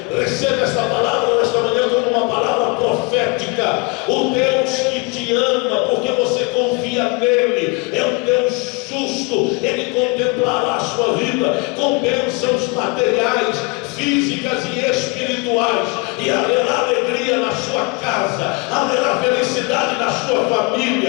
Receba esta palavra nesta manhã como uma palavra profética. O Deus que te ama, porque você confia nele, é um Deus justo. Ele contemplará a sua vida com bênçãos materiais, físicas e espirituais, e haverá alegria na sua casa, haverá felicidade na sua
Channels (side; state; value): right; quieter; 28.5 dB